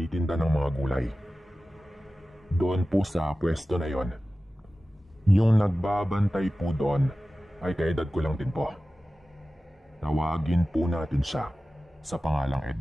ng mga gulay. Doon po sa pwesto na yon, yung nagbabantay po doon ay kaedad ko lang din po. Tawagin po natin siya sa pangalang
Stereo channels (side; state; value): both; normal; correlation 0.95